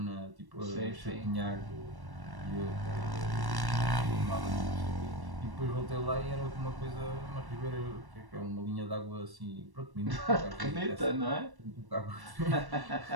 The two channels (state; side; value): late; left; 1.1 ms